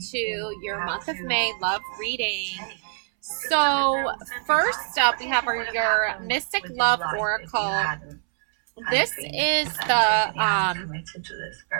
to your month of May love reading. So, first up, we have your Mystic Love Oracle. This is the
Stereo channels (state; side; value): silent; left; 62 dB below the other